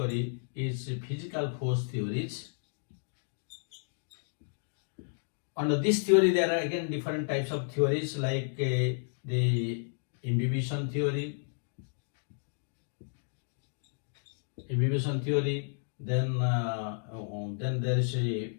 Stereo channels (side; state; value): right; silent; digital silence